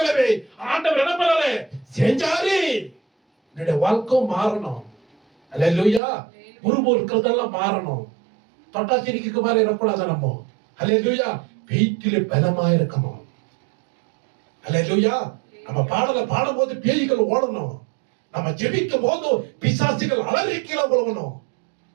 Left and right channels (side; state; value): left; drops out; at 6.0 s